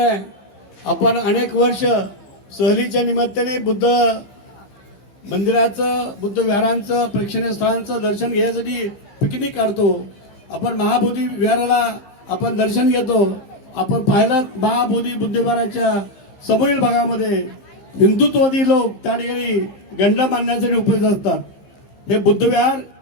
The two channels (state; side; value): late; right; 15 ms